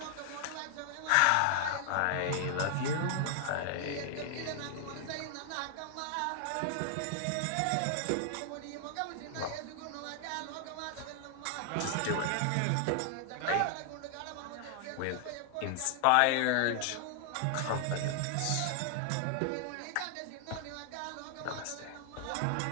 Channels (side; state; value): both; different; correlation 0.00